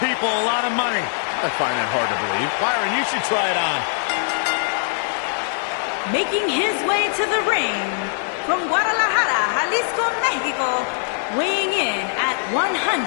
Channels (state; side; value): silent; right; digital silence